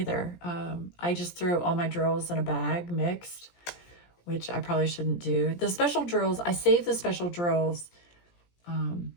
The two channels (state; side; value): late; right; 17 ms